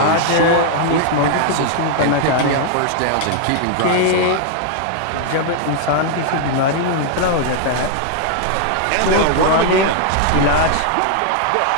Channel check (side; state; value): both; different; correlation 0.00